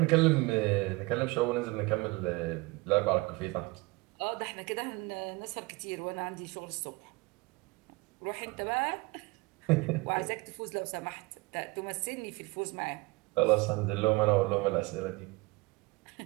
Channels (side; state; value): left; quieter; 24.4 dB